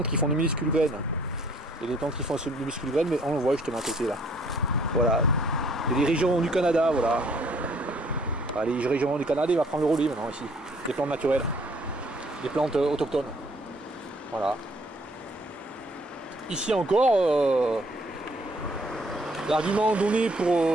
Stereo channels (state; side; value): normal; both; correlation 0.61